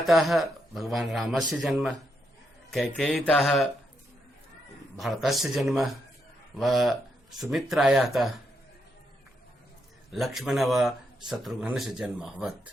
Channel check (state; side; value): normal; both; correlation 0.80